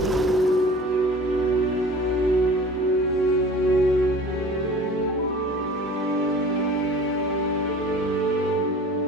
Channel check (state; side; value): normal; both; correlation 0.43